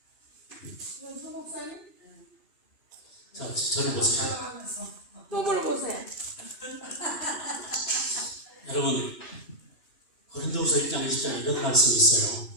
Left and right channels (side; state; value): right; late; 2.5 ms